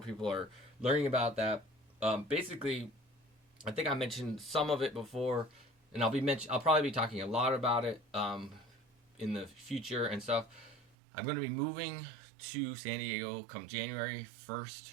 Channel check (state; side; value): drops out; left; at 10.9 s